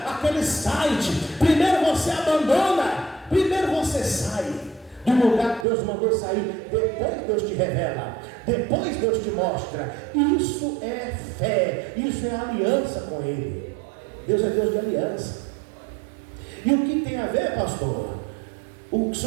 aquele site, primeiro você sai do lugar que Deus mandou sair, depois Deus te revela, depois Deus te mostra. Isso é fé, isso é aliança com Ele. Deus é Deus de aliança. E o que tem a ver, pastor? O que o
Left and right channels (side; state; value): left; drops out; at 5.7 s